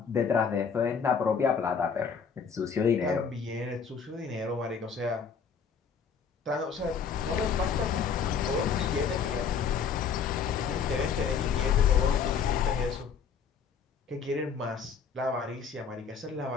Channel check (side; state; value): right; quieter; 6.4 dB